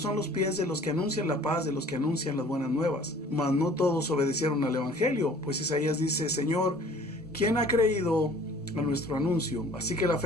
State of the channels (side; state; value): both; normal; correlation 0.51